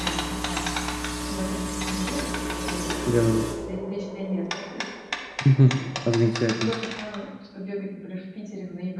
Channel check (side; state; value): both; identical; correlation 1.00